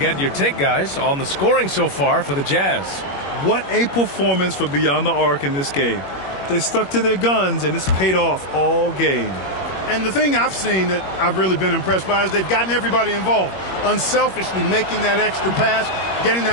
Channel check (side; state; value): right; late; 21 ms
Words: your take, guys, on the scoring so far for the Jazz. What a performance for Beyond the Arc in this game. They stuck to their guns, and it's paid off all game. And the thing I've seen that I've really been impressed by is they've gotten everybody involved. Unselfishly making that extra pass, getting